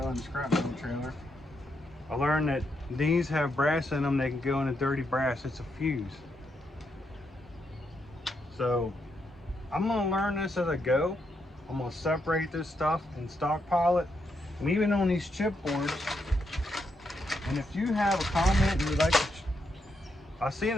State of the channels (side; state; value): both; normal; correlation 0.80